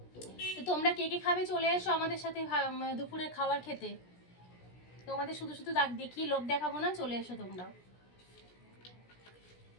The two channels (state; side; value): late; right; 17 ms